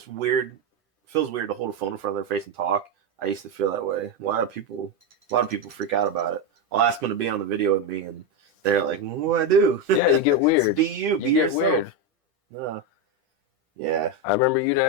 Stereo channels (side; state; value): both; normal; correlation 0.09